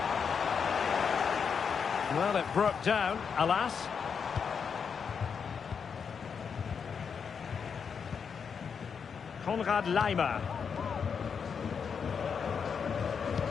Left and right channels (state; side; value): quieter; right; 6.4 dB